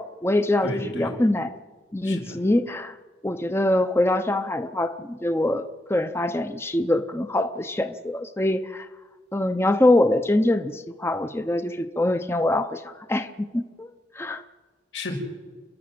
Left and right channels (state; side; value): normal; both; correlation 0.84